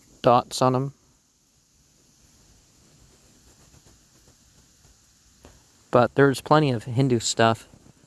dots on them. But there's plenty of Hindu stuff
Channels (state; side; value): identical; both; correlation 1.00